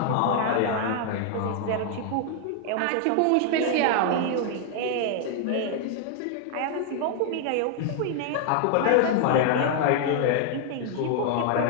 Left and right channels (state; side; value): different; both; correlation 0.00